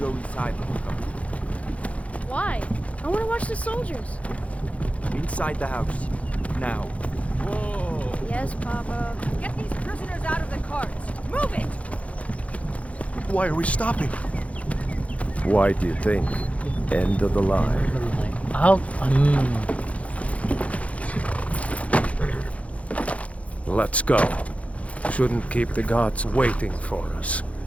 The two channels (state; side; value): late; right; 0.065 ms